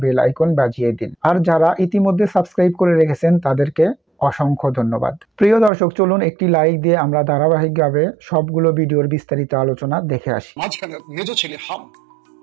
বেল আইকন বাজিয়ে দিন। আর যারা ইতিমধ্যে সাবস্ক্রাইব করে রেখেছেন তাদেরকে অসংখ্য ধন্যবাদ। প্রিয় দর্শক, চলুন একটি লাইক দিয়ে আমরা ধারাবাহিকভাবে সবগুলো ভিডিওর বিস্তারিত আলোচনা দেখে আসি। মাঝখানে মেজ ছেলে হাম,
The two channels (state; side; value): drops out; left; at 5.7 s